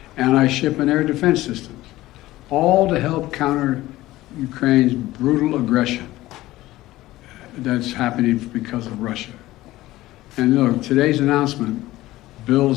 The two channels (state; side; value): quieter; right; 16.8 dB